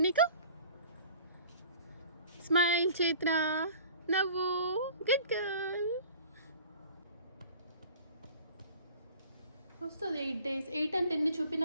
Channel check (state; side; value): inverted; both; correlation -0.46